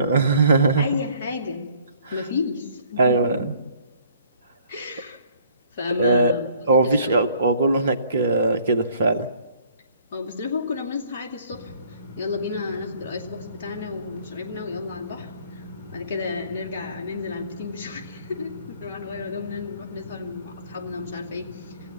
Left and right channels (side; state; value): both; inverted; correlation -0.59